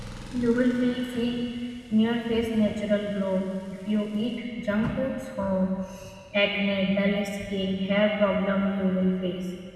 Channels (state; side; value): identical; both; correlation 1.00